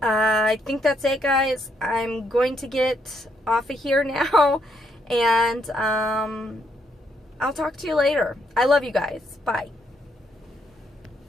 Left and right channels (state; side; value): normal; both; correlation 0.74